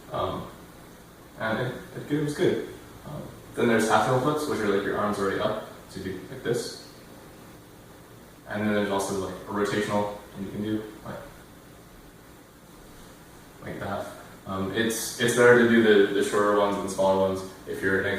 And it was good. Then there's half table flips, which are like your arms already up, so you do like this. And then there's also like a rotational, and you can do like that. It's better to do the shorter ones and the smaller ones if you're in a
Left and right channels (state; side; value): identical; both; correlation 1.00